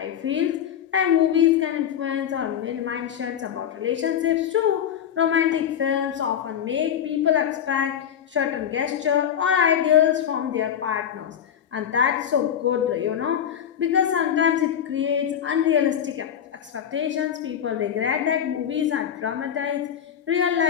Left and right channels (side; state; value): right; quieter; 9.1 dB